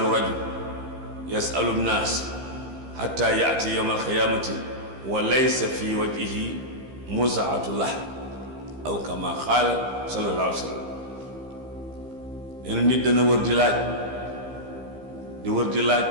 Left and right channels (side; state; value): left; late; 15 ms